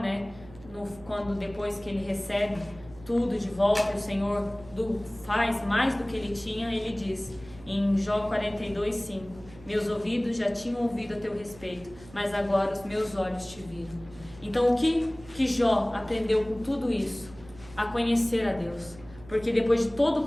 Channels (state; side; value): noise; right; hum, 20 dB below the sound